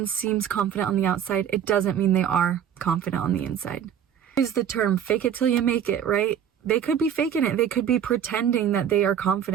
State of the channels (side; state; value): left; quieter; 8.9 dB